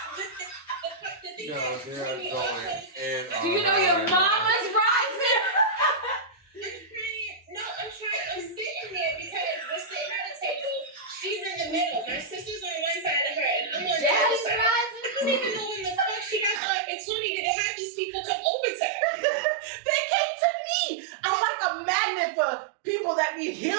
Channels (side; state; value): left; drops out; at 16.6 s